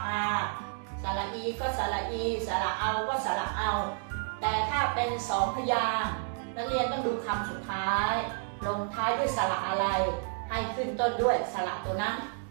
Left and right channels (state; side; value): silent; left; 57 dB below the other